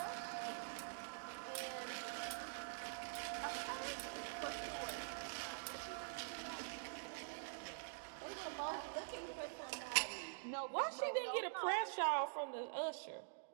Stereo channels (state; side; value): silent; left; digital silence